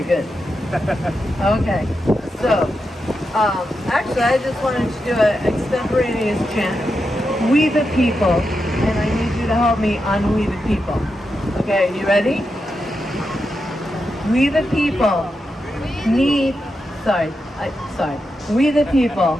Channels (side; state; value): both; normal; correlation 0.87